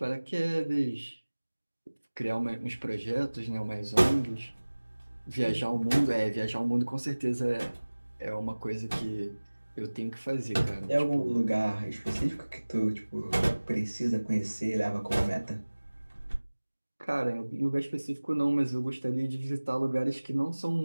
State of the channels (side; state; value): both; inverted; correlation -1.00